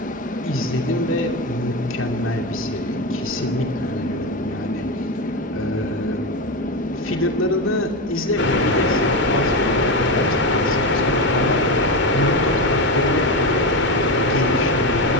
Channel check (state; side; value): normal; both; correlation 0.16